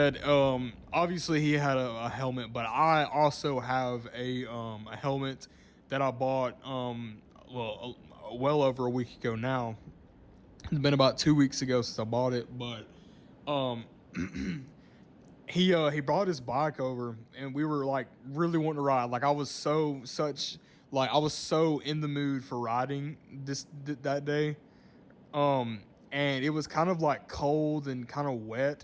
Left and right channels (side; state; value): both; identical; correlation 1.00